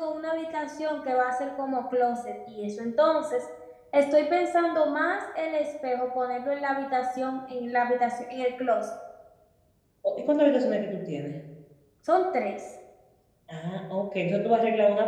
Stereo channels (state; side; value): identical; both; correlation 1.00